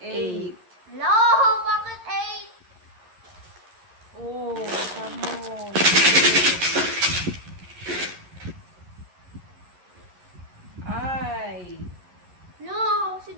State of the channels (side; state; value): left; late; 11 ms